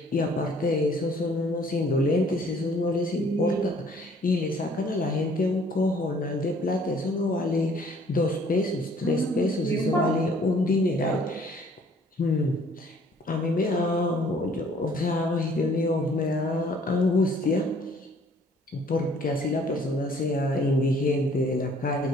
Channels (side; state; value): both; normal; correlation 0.58